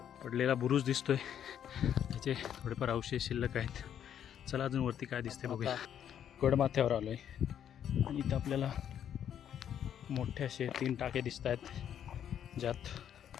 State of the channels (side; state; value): right; quieter; 9.5 dB